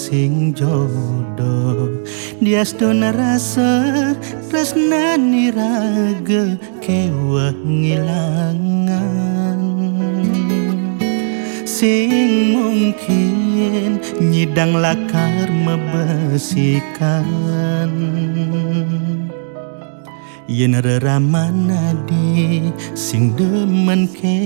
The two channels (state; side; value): silent; left; 69 dB below the other